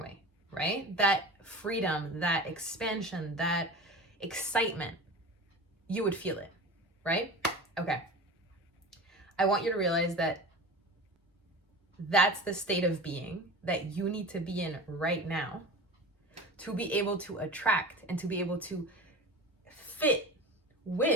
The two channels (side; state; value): both; normal; correlation 0.33